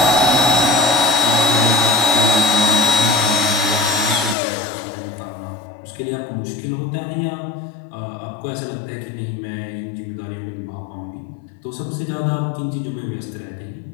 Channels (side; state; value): right; drops out; at 4.4 s